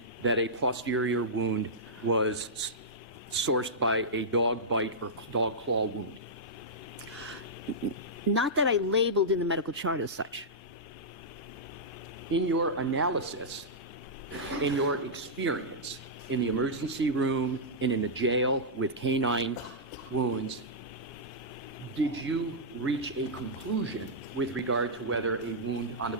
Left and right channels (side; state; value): both; normal; correlation -0.12